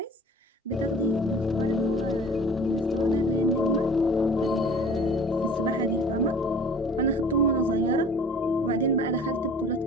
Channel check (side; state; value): both; normal; correlation 0.46